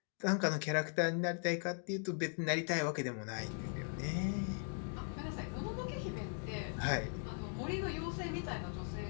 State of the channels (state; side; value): silent; right; 52 dB below the other